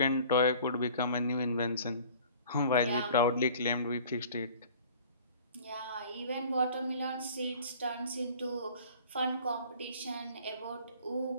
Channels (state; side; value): inverted; both; correlation -0.48